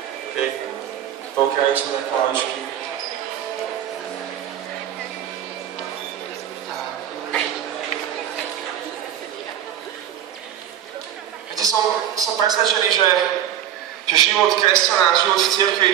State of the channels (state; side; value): quieter; left; 10.6 dB